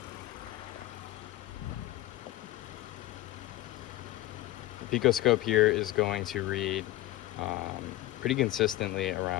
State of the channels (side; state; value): right; quieter; 15.8 dB